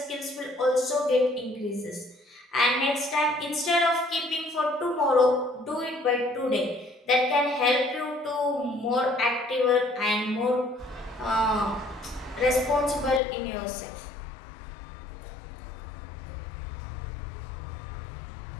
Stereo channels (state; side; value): drops out; right; at 13.2 s